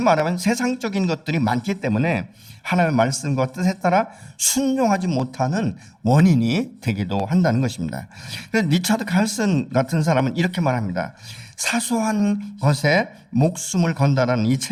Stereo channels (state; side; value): identical; both; correlation 1.00